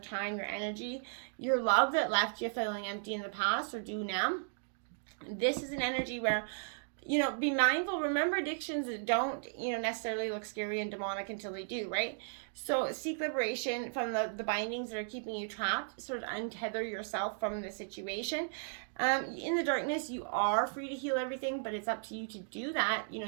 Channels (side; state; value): left; silent; digital silence